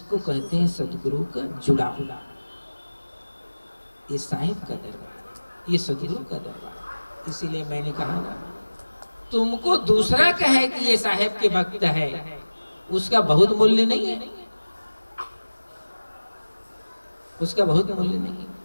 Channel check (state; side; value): inverted; both; correlation -1.00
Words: कहते हैं सदगुरु का जुड़ाव। ये साहिब का दरबार, ये सदगुरु का दरबार। इसीलिए मैंने कहा ना, तुमको दूसरा कहे कि ये साहिब के भक्त है, उसका बहुत मूल्य नहीं है, उसका बहुत मूल्य नहीं है।